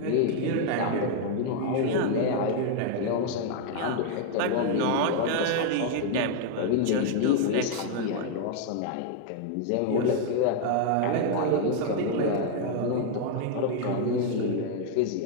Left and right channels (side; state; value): both; different; correlation 0.00